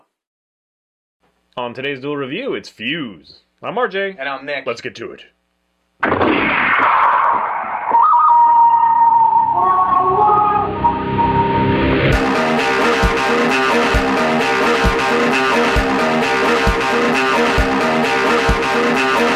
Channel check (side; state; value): both; identical; correlation 1.00